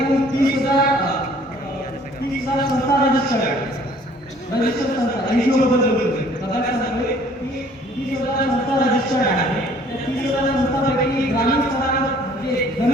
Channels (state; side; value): normal; both; correlation 0.56